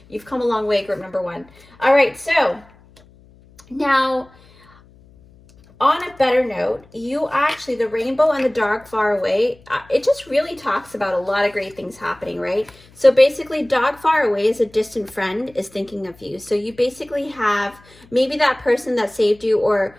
You've come a long way, group number one. All right, so now, on a better note, you actually, the rainbow and the dog far away, it just really talks about a lot of great things happening, right? So basically, dog far away is a distant friend is thinking of you. So you basically have maybe that person that saved you, or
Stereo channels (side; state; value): left; noise; hum, 27 dB below the sound